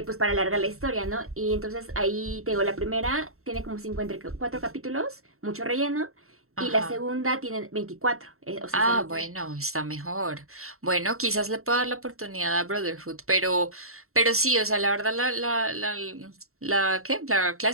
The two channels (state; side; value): late; left; 0.63 ms